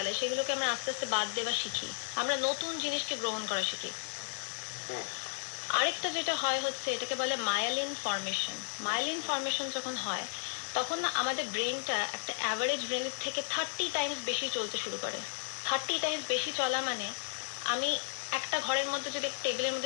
সেগুলোকে আমরা আস্তে আস্তে বাদ দেওয়া শিখি, আমরা নতুন জিনিসকে গ্রহণ করা শিখি। আরেকটা যেটা হয় হচ্ছে এটাকে বলে মায়ালিন ফর্মেশন। মায়ালিন ফর্মেশন যখন হয় তখন না আমাদের ব্রেনটা একটা অ্যাভারেজ ব্রেনের থেকে 30 টাইমস বেশি চলতে শুরু করে। 30 টাইমস বেশি চলা মানে আমি একটা ঘরের মধ্যে যদি টেবিলের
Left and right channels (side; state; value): right; silent; 55 dB below the other